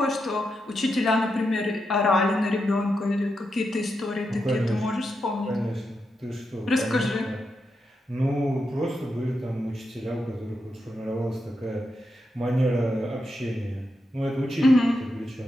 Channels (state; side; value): normal; both; correlation 0.85